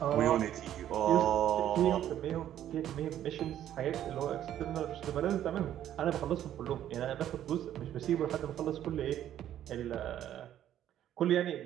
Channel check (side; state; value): left; quieter; 11.3 dB